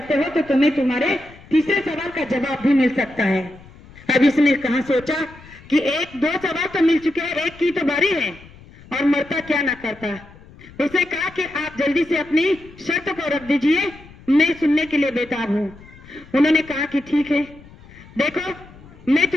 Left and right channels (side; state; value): left; noise; rumble, 22 dB below the sound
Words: हो तो तुम्हें तुम्हारे तीसरे सवाल का जवाब भी मिल सकता है। अब इसने कहा सोचा कि 2 सवाल तो मिल चुके हैं, एक की तो बारी है और मरता क्या ना करता। उसे कहा कि आप जल्दी से अपनी शर्त को रख दीजिए, मैं सुनने के लिए बेताब हूँ। उन्होंने कहा कि ठीक है, देखो मैं